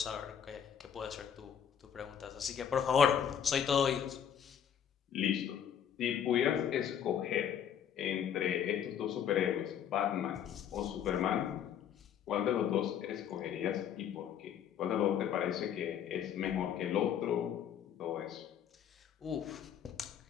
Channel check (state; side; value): quieter; right; 8.8 dB